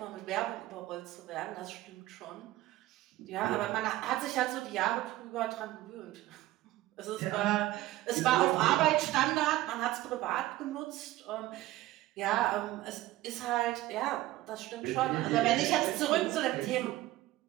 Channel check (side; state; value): left; quieter; 16.3 dB